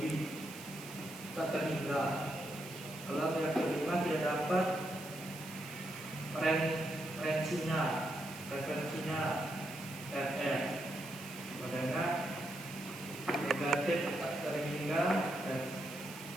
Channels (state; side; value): noise; right; hiss, 14 dB below the sound